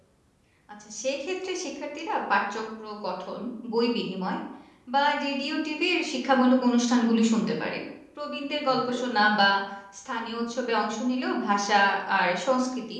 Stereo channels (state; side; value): identical; both; correlation 1.00